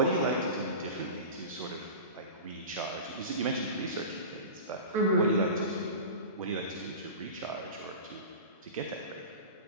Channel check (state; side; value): inverted; both; correlation -0.31